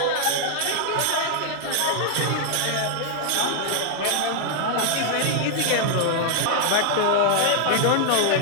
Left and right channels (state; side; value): different; both; correlation 0.00